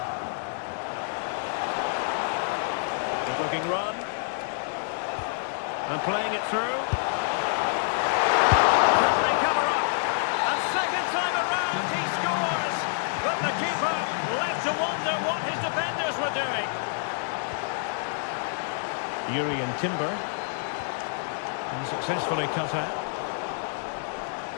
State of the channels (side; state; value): right; silent; 60 dB below the other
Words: Good looking run. And playing it through. Can they cover up? And second time around he scores. But the keeper left to wonder what his defenders were doing. Urian Timber. And successfully cut out.